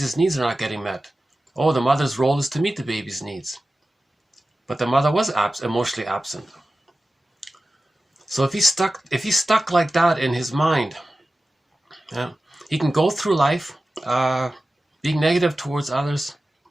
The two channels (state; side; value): normal; both; correlation 0.95